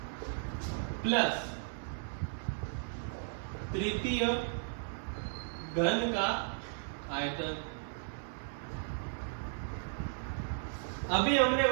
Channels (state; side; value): silent; left; digital silence